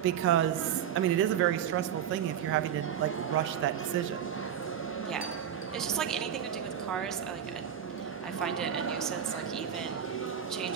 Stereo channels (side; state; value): left; quieter; 9.0 dB